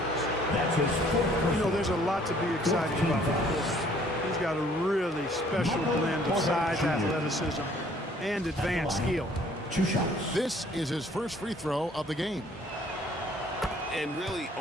You know, there's a lot to be excited about. He's got a really special blend of size, athleticism, and advanced skill. 2 shots. This is his first free throw of the game. And really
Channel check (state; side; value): normal; both; correlation 0.59